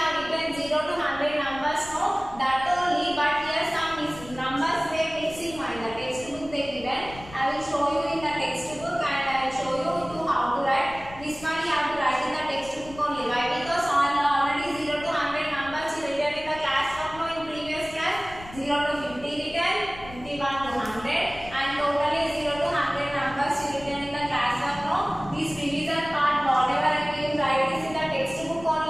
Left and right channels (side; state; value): left; noise; rumble, 17 dB below the sound